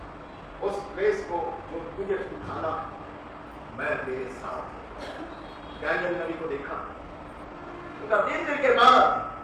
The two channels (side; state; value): both; identical; correlation 1.00